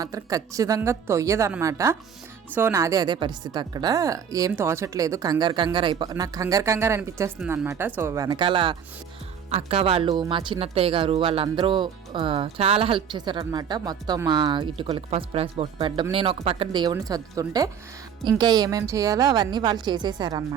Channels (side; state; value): left; quieter; 7.7 dB